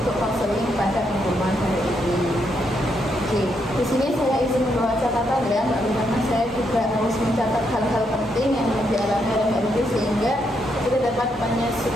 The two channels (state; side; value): normal; both; correlation 0.78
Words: konseling pada pengumuman hari ini. Oke, di sini saya izin membawa catatan ya Mbak Wilty, karena saya juga harus mencatat hal-hal penting yang dialami oleh Mbak Wilty sehingga kita dapat